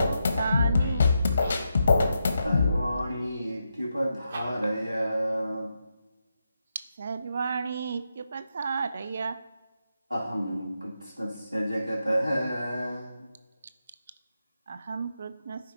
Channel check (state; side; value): inverted; both; correlation -0.85